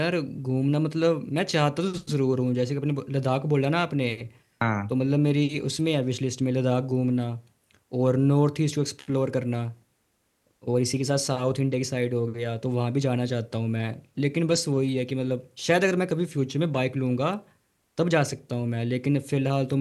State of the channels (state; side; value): identical; both; correlation 1.00